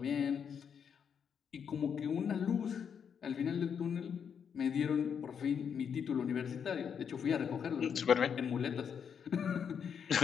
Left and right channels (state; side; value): quieter; right; 7.3 dB